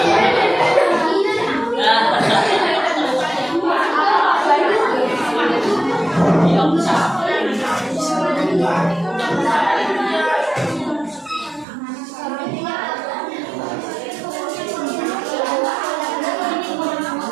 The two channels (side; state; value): left; drops out; at 11.7 s